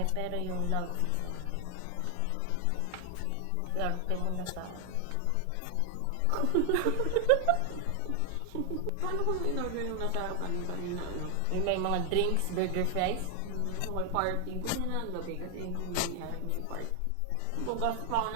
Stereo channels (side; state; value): both; different; correlation 0.00